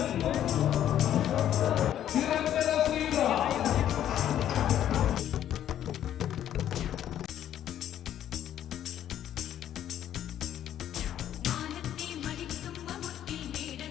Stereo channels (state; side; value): quieter; right; 11.0 dB